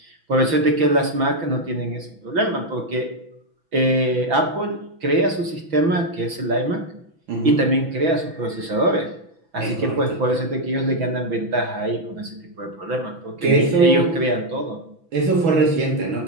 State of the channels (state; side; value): late; left; 6.0 ms